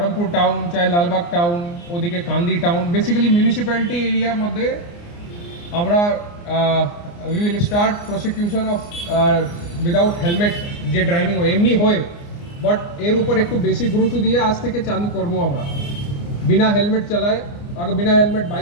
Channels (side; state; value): right; late; 29 ms